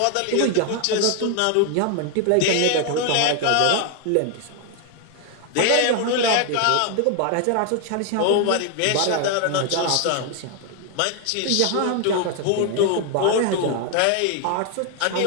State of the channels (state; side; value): different; both; correlation 0.01